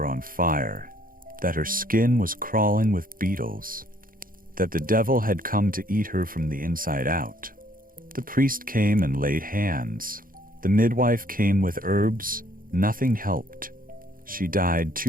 on fire, that her skin was crawling with beetles, that the devil had come to eat her from the inside out. The priest came and laid hands. The midwife came with herbs. Nothing helped. She died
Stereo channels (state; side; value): late; left; 0.41 ms